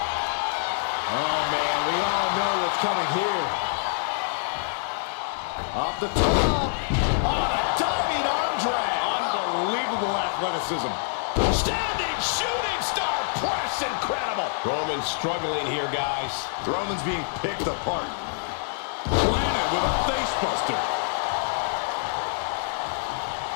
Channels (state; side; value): silent; right; digital silence